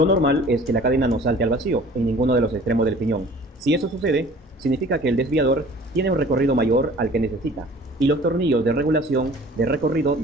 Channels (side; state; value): both; normal; correlation 0.49